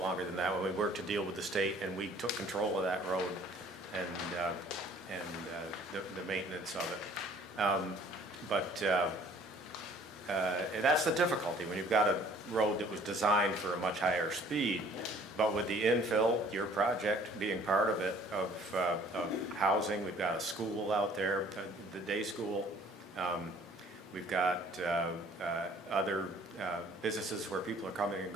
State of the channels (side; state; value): both; normal; correlation 0.55